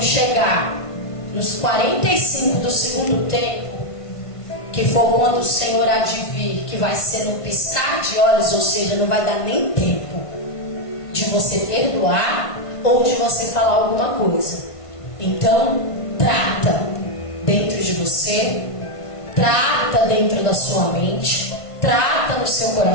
chegar nos 45 do segundo tempo, que for quando o Senhor há de vir, que vai ser no piscar de olhos, ou seja, não vai dar nem tempo de você perdoar ou de você falar alguma coisa. Então trata dentro de você, trata dentro da sua mente, trata no seu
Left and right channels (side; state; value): right; late; 1.5 ms